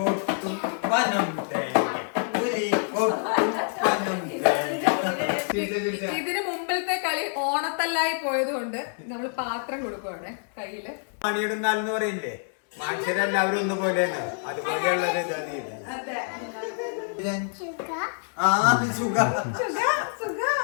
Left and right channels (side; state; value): right; silent; 60 dB below the other